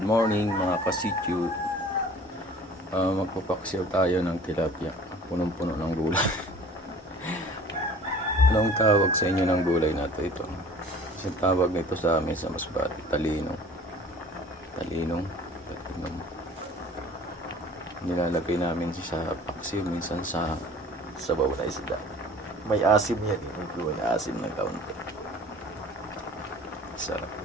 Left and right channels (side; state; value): both; normal; correlation 0.48